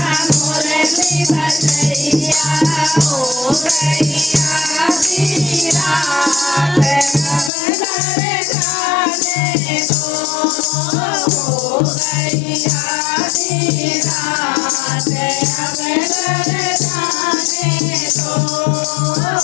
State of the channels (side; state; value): right; drops out; at 7.5 s